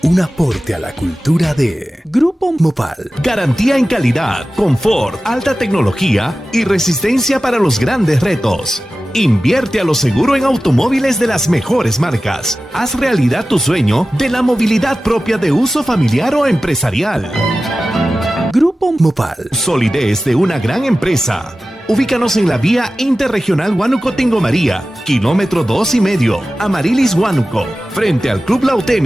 Un aporte a la cultura de Grupo Mopal. Garantía en calidad, confort, alta tecnología y resistencia para los grandes retos. Invierte a lo seguro en automóviles de las mejores marcas. Haz realidad tu sueño de la movilidad propia de uso familiar o empresarial. Grupo Mopal. Solidez de una gran empresa. Ubícanos en la vía interregional Huánuco-Tingo María, kilómetro 2,5, Amarilis Huánuco, frente al Club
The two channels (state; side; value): normal; both; correlation 0.95